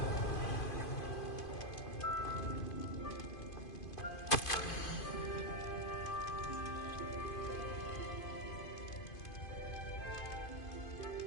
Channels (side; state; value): right; late; 2.5 ms